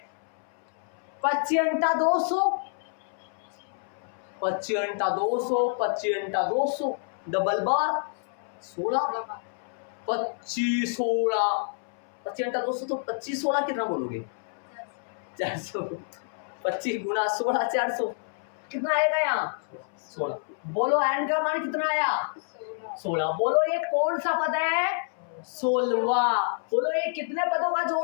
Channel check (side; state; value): right; silent; 59 dB below the other